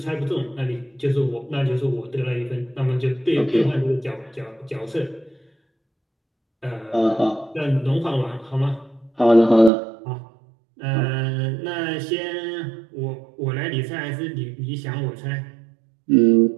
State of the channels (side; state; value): left; drops out; at 9.7 s